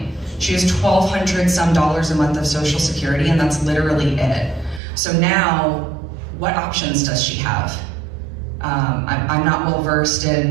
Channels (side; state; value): left; drops out; at 4.8 s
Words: She has $1,200 some a month of Social Security, and that's literally it. So now, what options does she have? I'm not well versed